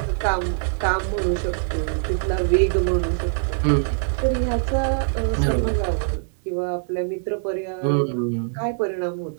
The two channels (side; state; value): left; silent; digital silence